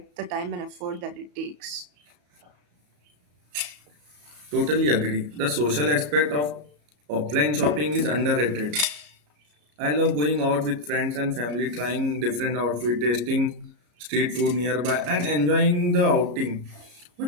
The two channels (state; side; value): late; left; 34 ms